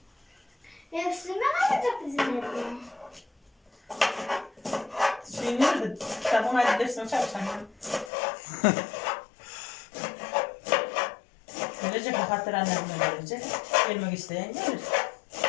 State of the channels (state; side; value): drops out; right; at 8.1 s